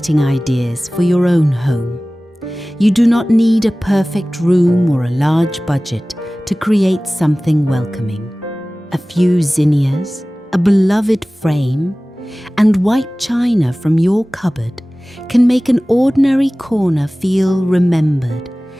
ideas for your own home. You do not need a perfect room or a large budget to create something welcoming. A few zinnias, a beloved frame, and white china from your cupboard can make an ordinary corner feel remembered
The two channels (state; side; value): normal; both; correlation 0.98